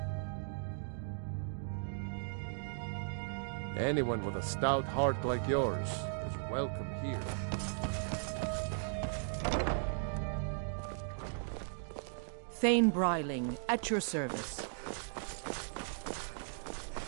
Anyone with a stout heart like yours is welcome here. Thane Bryling, at your service.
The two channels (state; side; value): silent; left; digital silence